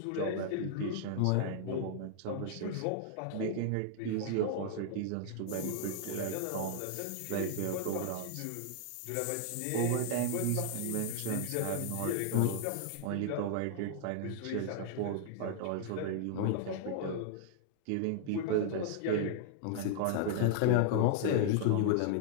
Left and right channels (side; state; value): both; different; correlation -0.01